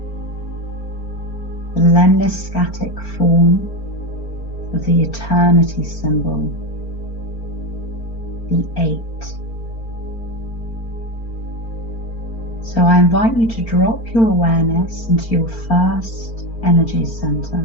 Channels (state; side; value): late; right; 4.4 ms